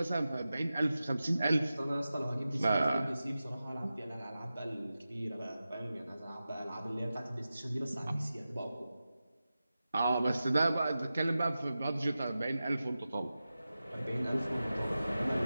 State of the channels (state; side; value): inverted; both; correlation -0.94